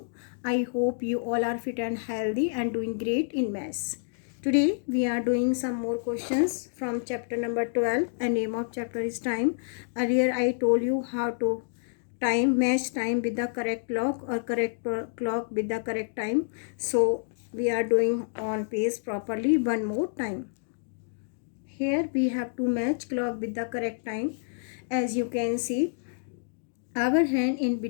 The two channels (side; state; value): right; silent; digital silence